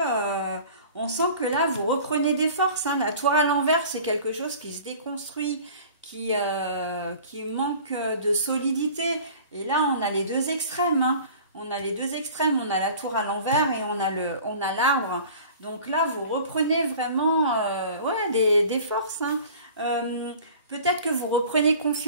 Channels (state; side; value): inverted; both; correlation -0.44